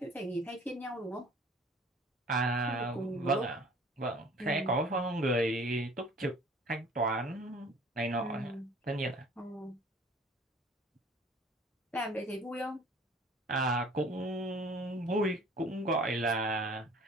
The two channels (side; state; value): both; normal; correlation 0.50